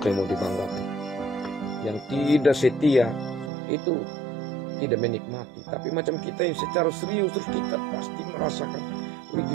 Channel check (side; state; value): left; drops out; at 3.5 s